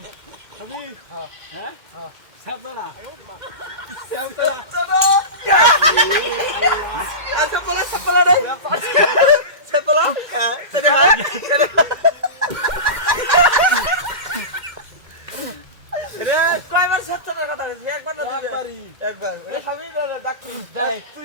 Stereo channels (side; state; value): left; late; 2.1 ms